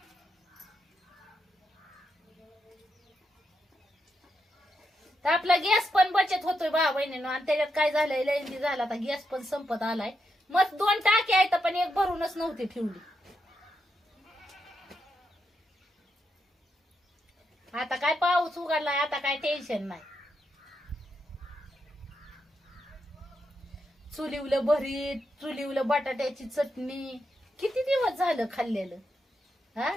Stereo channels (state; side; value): normal; both; correlation 0.83